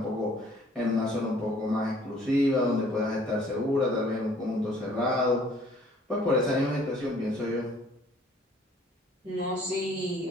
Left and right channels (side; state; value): both; normal; correlation 0.57